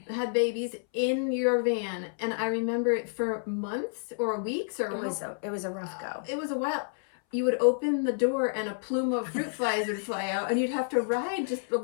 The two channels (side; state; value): right; silent; 58 dB below the other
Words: Had babies in your van, and I remember it for months or weeks or it was a rough go. It was a while. You would open the door and a plume of fruit flies would fly out and you'd have to